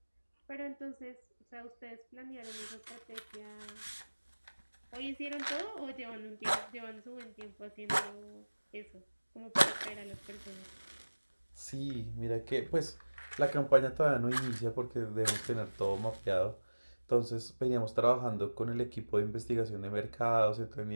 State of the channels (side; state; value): both; inverted; correlation -1.00